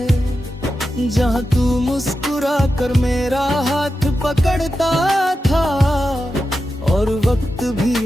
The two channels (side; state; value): both; normal; correlation 0.90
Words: जहाँ तू मुस्कुरा कर मेरा हाथ पकड़ता था और वक्त